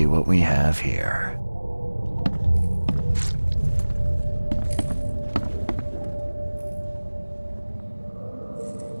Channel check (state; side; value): inverted; both; correlation -1.00